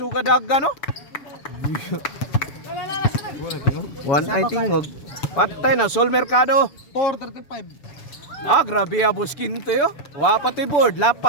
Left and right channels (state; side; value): late; right; 6.9 ms